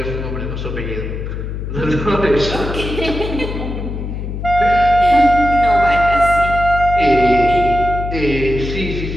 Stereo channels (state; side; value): noise; left; hum, 6 dB below the sound